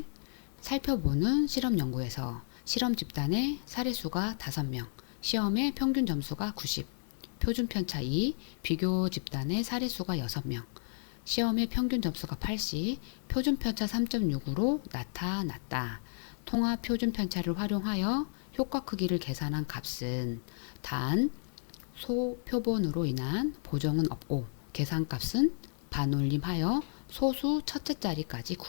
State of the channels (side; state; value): right; silent; digital silence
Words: 살펴보는 실험 연구에서 실험 집단의 사례수가 5명, 시험의 평균 점수가 90, 표준 편차 2, 비교 집단의 사례수가 6명, 시험의 평균 점수가 80, 표준 편차 3.6으로 나타났다. 통합 표준 편차를 활용하여 효과 크기를 계산한 값은 단 소표본으로 인한 보정은 없고 계산값은 반올림하여 소수 첫째 자리까지